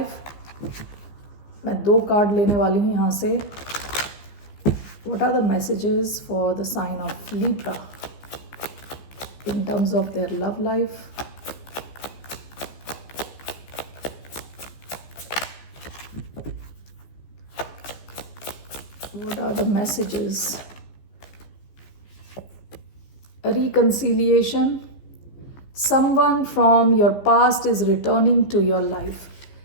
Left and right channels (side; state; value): right; late; 15 ms